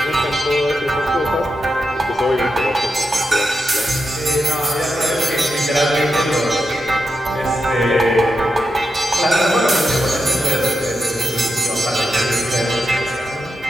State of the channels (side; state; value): both; normal; correlation 0.87